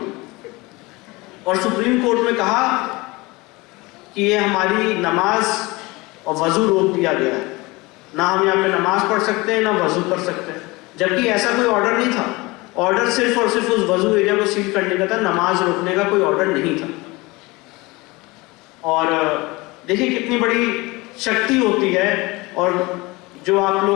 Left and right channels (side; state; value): right; quieter; 23.3 dB